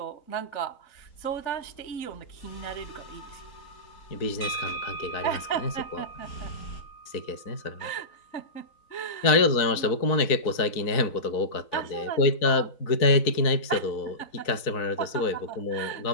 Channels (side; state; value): right; late; 4.0 ms